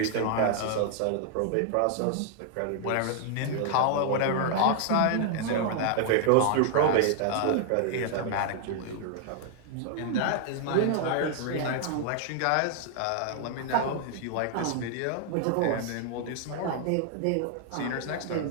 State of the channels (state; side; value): different; both; correlation 0.00